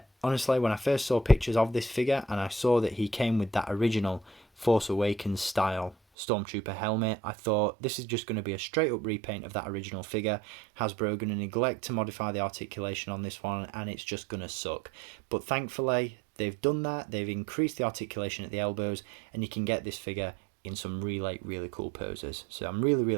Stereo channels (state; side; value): drops out; left; at 6.0 s